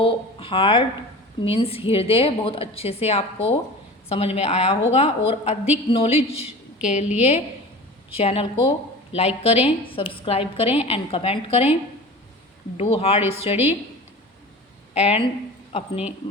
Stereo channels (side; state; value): both; normal; correlation 0.36